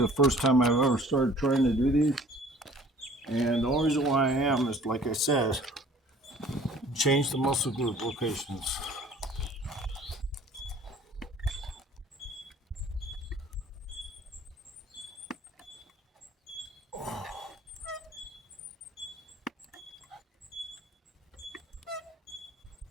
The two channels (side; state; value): both; normal; correlation 0.52